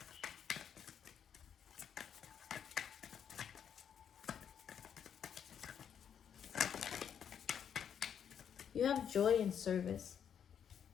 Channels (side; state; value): right; quieter; 8.3 dB